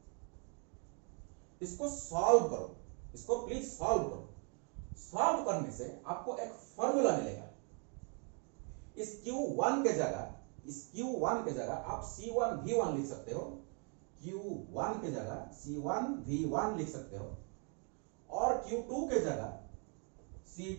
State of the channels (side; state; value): left; quieter; 38.9 dB